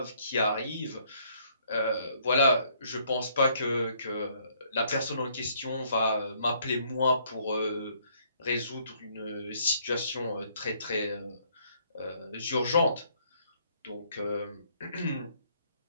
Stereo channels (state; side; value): inverted; both; correlation -0.66